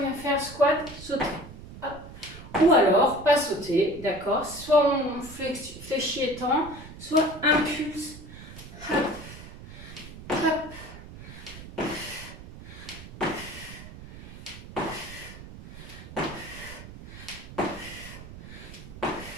faire squat, sauter. Hop. Ou alors, pas sauter, d'accord? Soit on fléchit étend, soit impulse. Hop, hop.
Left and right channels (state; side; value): noise; right; rumble, 14 dB below the sound